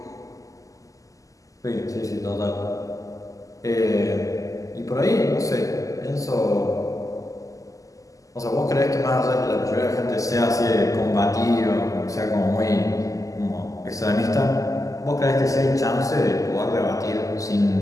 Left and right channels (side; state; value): right; late; 0.16 ms